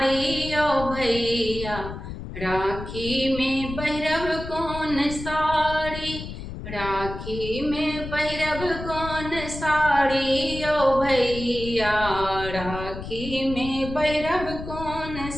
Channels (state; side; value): noise; left; rumble, 9 dB below the sound